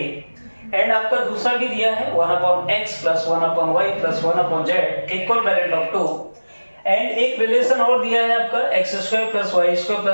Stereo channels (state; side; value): inverted; both; correlation -1.00